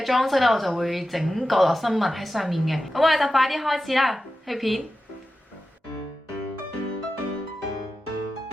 裝飾咧我就會整角落生物喺上面嘅。咁我哋就快啲開始啦，去片。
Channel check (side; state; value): both; normal; correlation 0.92